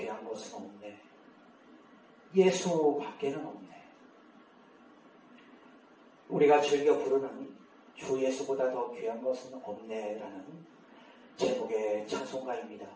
것은 없네. 예수 밖에는 없네. 우리가 즐겨 부르는 주 예수보다 더 귀한 것은 없네 라는 제목의 찬송가입니다.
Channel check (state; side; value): identical; both; correlation 1.00